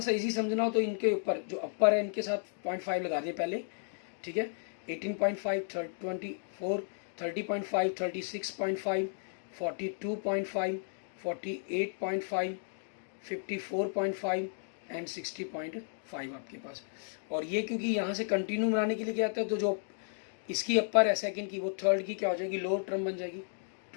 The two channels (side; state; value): right; silent; digital silence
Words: इजी समझना हो तो इनके ऊपर जो अपर है इनके साथ 0.5 लगा दिए पहले, ठीक है। 18.5, 24, 30.5, 36.5, 42.5, 48.5, 54.5 एंड 60.5 आपके पास। और ये क्योंकि यहाँ से कंटिन्यू बनाने के लिए क्या आता है, तो जो इसकी अपर है सेकंड की, वो थर्ड की क्या हो जाएगी, लोअर टर्म बन जाएगी।